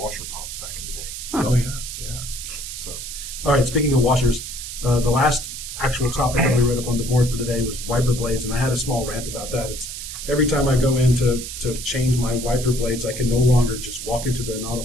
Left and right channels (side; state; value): right; noise; hiss, 8 dB below the sound